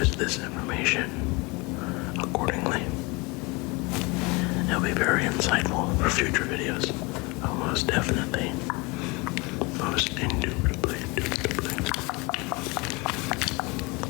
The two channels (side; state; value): right; quieter; 26.7 dB